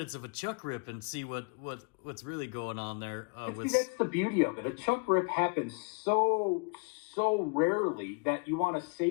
of a Chuck rip and see what's really going on there. That's the beauty of it. A Chuck rip happens so rarely that you want to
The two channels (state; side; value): quieter; right; 32.8 dB